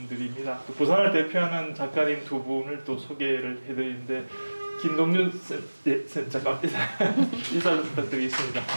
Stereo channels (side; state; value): both; inverted; correlation -1.00